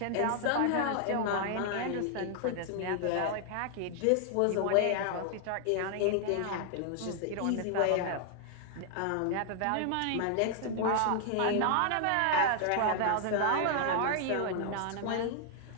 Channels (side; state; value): both; different; correlation 0.00